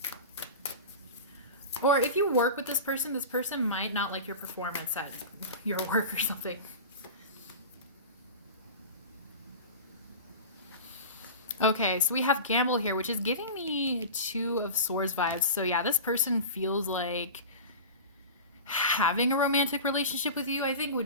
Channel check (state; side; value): inverted; both; correlation -0.31